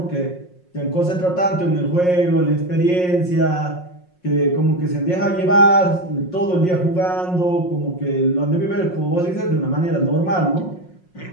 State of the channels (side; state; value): right; late; 5.5 ms